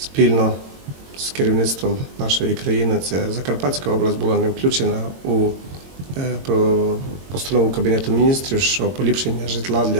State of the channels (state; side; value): late; left; 22 ms